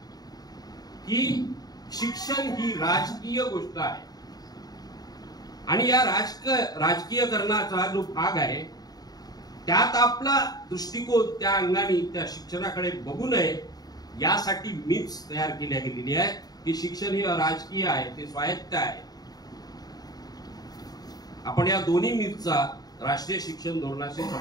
की शिक्षण ही राजकीय गोष्ट आहे, आणि या राजकीयकरणाचा जो भाग आहे त्यात आपला दृष्टिकोन त्या अंगाने त्या शिक्षणाकडे बघू नये यासाठी मीच तयार केल्या गेलेली आहे की शिक्षण हे राजकीय आहे, ते स्वायत्त आहे. आपण या दोन्ही मीचा राष्ट्रीय शिक्षण धोरणाशी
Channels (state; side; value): late; right; 0.19 ms